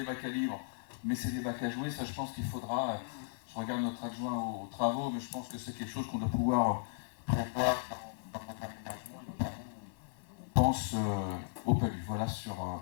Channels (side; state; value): right; silent; 54 dB below the other